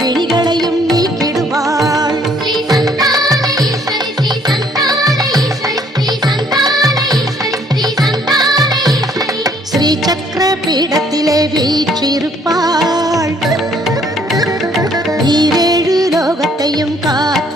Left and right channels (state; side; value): normal; both; correlation 0.63